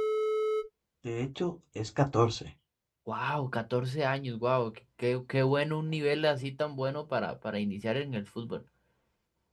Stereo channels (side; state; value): both; identical; correlation 1.00